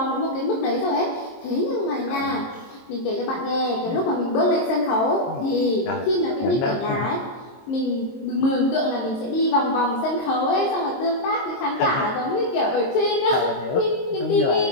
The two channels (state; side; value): late; right; 23 ms